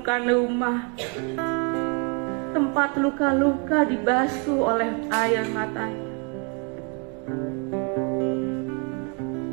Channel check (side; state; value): left; quieter; 35.9 dB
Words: rumah, tempat luka-luka dibasuh oleh air matanya.